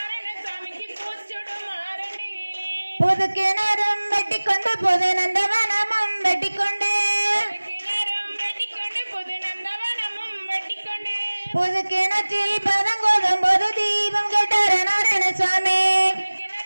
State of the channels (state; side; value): inverted; both; correlation -1.00